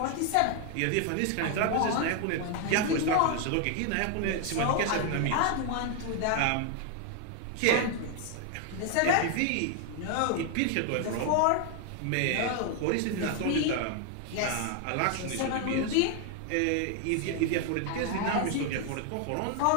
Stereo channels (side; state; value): both; different; correlation 0.00